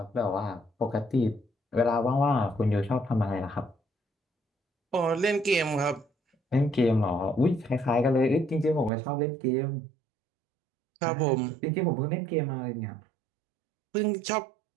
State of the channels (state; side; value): drops out; left; at 8.9 s